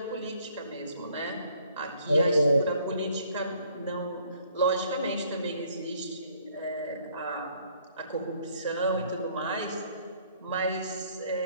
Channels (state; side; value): inverted; both; correlation -0.63